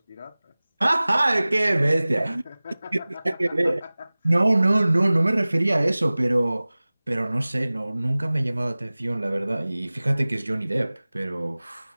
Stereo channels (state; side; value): inverted; both; correlation -0.99